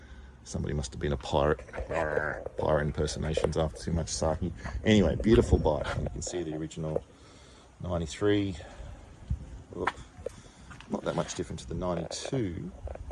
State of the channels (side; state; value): both; identical; correlation 1.00